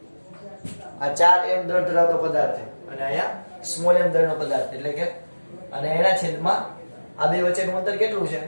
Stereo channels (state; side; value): inverted; both; correlation -1.00